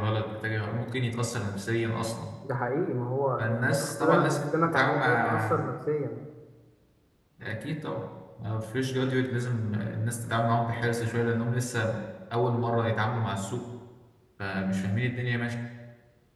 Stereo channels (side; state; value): both; identical; correlation 1.00